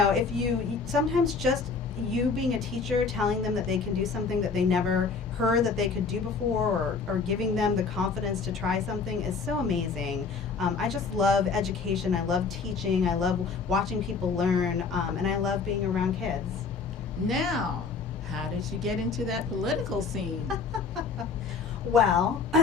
you sometimes just you being a teacher telling them that they can do something that they never heard that they could do before, or giving them the confidence to try something is so amazing. I just love education. I love teaching. I love watching people learn, and I love being around kids. Now, how did you get into that political scene? Well,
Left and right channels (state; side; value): quieter; right; 4.9 dB